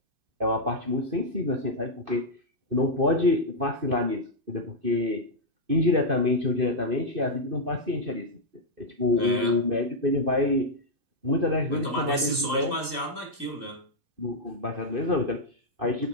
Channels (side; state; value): left; late; 2.5 ms